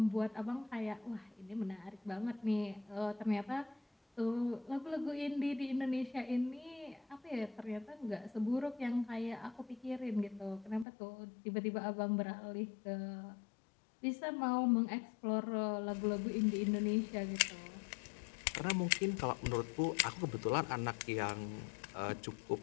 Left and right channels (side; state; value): right; drops out; at 10.9 s